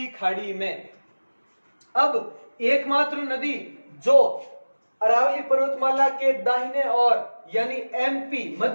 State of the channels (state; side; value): inverted; both; correlation -1.00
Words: खाड़ी में। अब एकमात्र नदी जो अरावली पर्वतमाला के दाहिने और यानी एमपी,